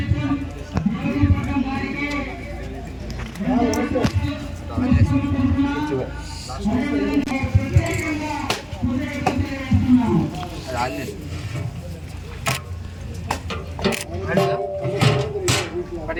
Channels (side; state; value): both; identical; correlation 1.00